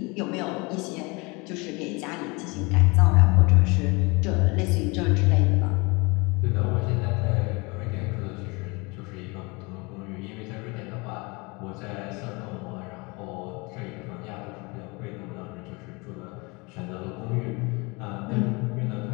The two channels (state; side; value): quieter; right; 27.2 dB